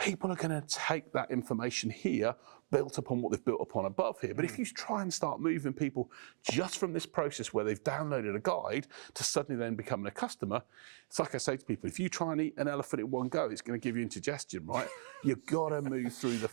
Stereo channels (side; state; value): left; silent; digital silence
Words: are going to take that information here, built upon what they've built upon above here. But if you try and start moving people just from this process where they've downloaded a guide to suddenly then becoming a customer, it's like I say to people, if you try and eat an elephant in one go, it's going to give you indigestion, right? You've got to move through the